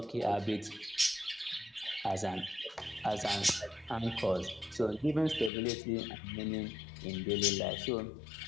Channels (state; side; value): drops out; right; at 5.5 s